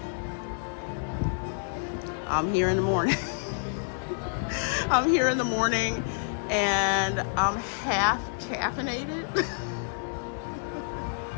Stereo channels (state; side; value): silent; right; 59 dB below the other